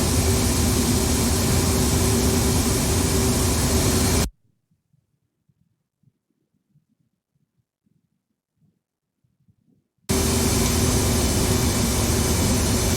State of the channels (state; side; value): identical; both; correlation 1.00